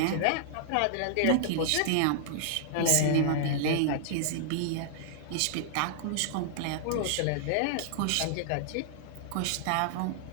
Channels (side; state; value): both; different; correlation -0.01